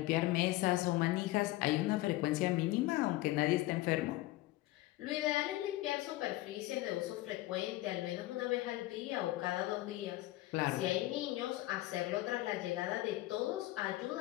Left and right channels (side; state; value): right; quieter; 17.7 dB